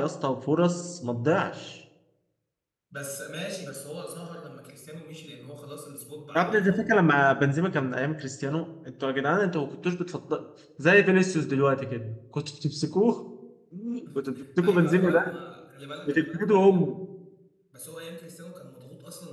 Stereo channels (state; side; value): identical; both; correlation 1.00